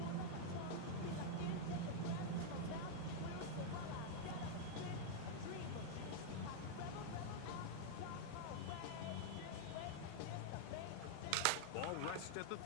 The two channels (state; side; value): different; both; correlation -0.01